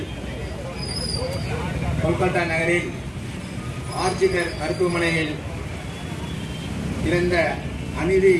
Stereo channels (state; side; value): identical; both; correlation 1.00